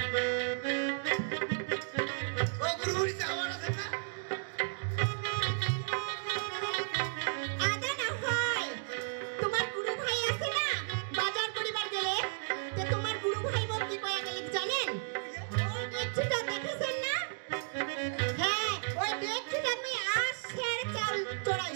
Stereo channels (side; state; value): left; silent; digital silence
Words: ও গুরুজি আমার আছে না আদা না হয় তোমার গুরু ভাই আছে না বাজার করিবার গেলে তো তোমার গুরু ভাই বোন কি কয়া গেলে জানেন ওই ব্যক্তিটা দেখেছেন না হ্যাঁ ওই ব্যক্তিটা আমি আশের চাল